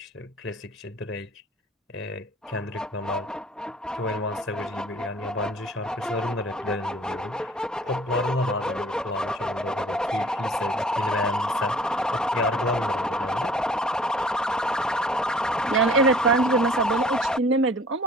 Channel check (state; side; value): normal; both; correlation 0.51